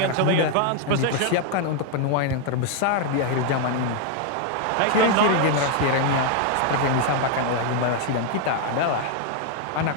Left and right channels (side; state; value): both; different; correlation 0.00